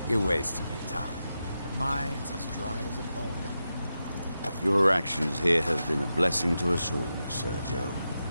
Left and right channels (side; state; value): both; inverted; correlation -0.89